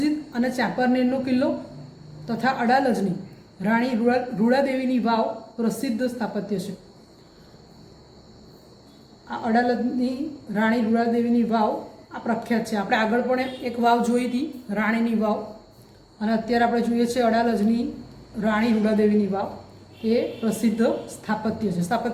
અને ચાંપાનેરનો કિલ્લો તથા અડાલજની રાણી રૂડાદેવીની વાવ પ્રસિદ્ધ સ્થાપત્ય છે. આ અડાલજની રાણી રૂડાદેવીની વાવ આ પ્રખ્યાત છે. આપણે આગળ પણ એક વાવ જોઈ હતી, રાણીની વાવ, અને અત્યારે આપણે જોઈએ છીએ અડાલજની રાણી રૂડાદેવીની વાવ. એ પ્રસિદ્ધ સ્થાપત્ય છે.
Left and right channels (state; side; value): identical; both; correlation 1.00